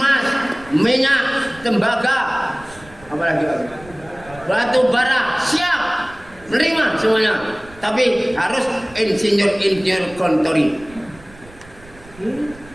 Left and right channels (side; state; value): right; noise; rumble, 22 dB below the sound